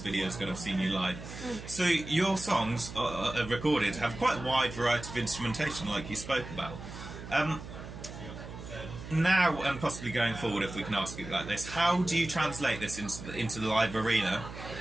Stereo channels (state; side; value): noise; right; hum, 12 dB below the sound